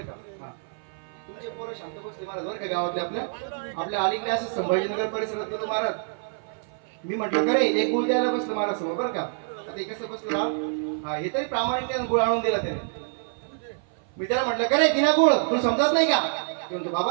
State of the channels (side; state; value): left; silent; 55 dB below the other